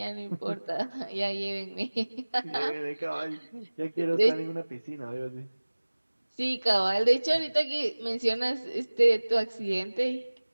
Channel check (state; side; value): inverted; both; correlation -1.00